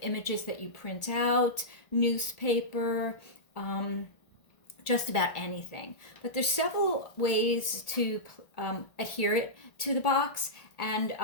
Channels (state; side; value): late; right; 1.8 ms